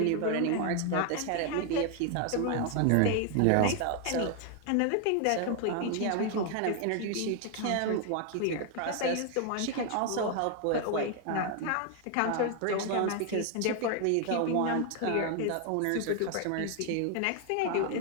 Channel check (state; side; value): different; both; correlation 0.00